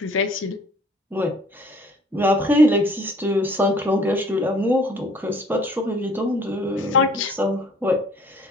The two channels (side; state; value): both; normal; correlation 0.56